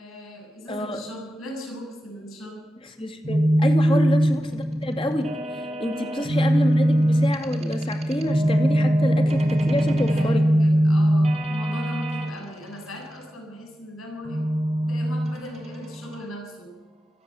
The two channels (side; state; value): both; normal; correlation 0.92